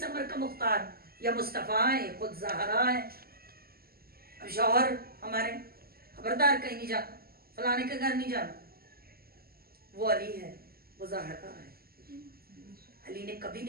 अमर का मुख्तार, या मुस्तफ़ा है, खुद ज़हरा है। अब शौहर हमारे खबरदार कहीं नहीं जाना, फलाने के घर नहीं जाना, वो अली है, वो ज़हरा है। अली ने कभी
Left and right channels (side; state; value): left; late; 0.44 ms